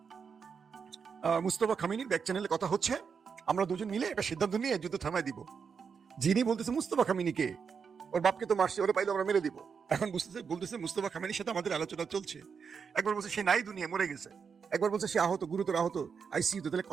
মুস্তফা খামেনির ব্যাক চ্যানেলে কথা হচ্ছে, আমরা দুজন মিলে একটা সিদ্ধান্ত নিয়ে যুদ্ধ থামায় দিব। যিনি বলতেছে মুস্তফা খামেনিকে, ওর বাপকে তো মারছে, ওরা পাইলে আমরা মেরে দিব। এখন বলতেছে মুস্তফা খামেনির সাথে আমাদের আলোচনা চলছে। একবার বলছে সে নাই, দুনিয়া মরে গেছে, একবার বলছে সে আহত, গুরুতর আহত, আইসিইউতে। তাহলে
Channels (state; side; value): quieter; left; 6.1 dB